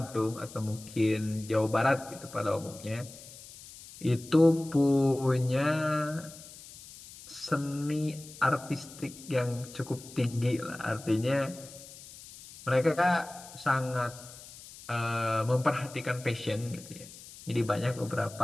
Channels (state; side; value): noise; left; hiss, 17 dB below the sound